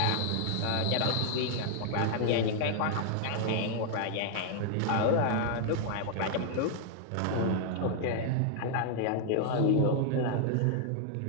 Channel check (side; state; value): both; different; correlation 0.00